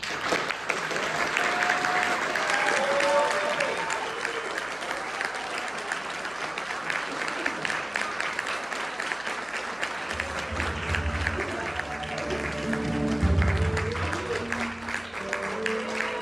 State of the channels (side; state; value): right; noise; hum, 29 dB below the sound